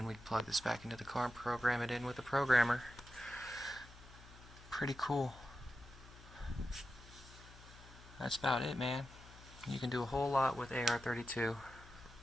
we plug this back into the car and program it in with the programmer. Pretty cool. That's about it, man. You can do a whole lot with AR32.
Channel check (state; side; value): noise; left; hum, 19 dB below the sound